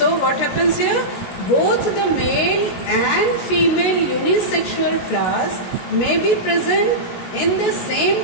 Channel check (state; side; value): late; right; 16 ms